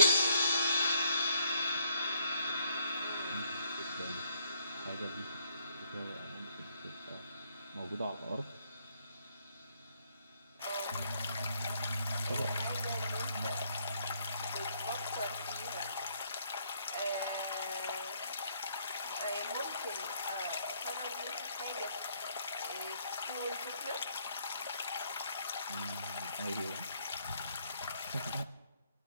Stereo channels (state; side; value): inverted; both; correlation -0.69